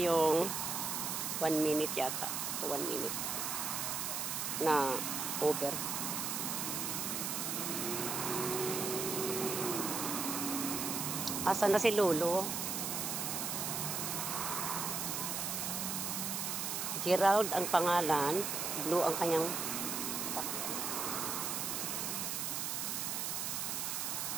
1 minute yata. 1 minute na Uber. Asan na si Lolo? Gerald ang pangalan, Blue ang kanyang sasakyan.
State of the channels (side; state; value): right; noise; hiss, 1 dB below the sound